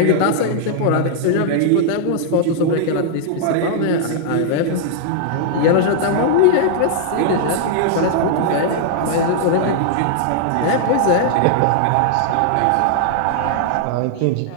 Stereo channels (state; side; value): different; both; correlation -0.01